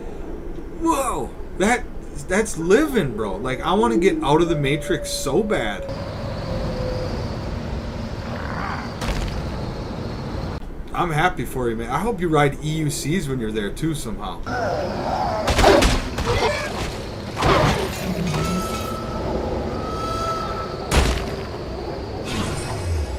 whoa, that's living, bro. Like, I want to get out of the Matrix so bad. I'm happy for you, man. I hope you ride EUCs when you're there too somehow.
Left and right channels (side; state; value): both; identical; correlation 1.00